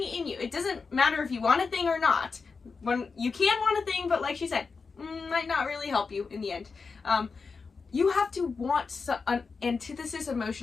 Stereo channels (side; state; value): right; quieter; 4.8 dB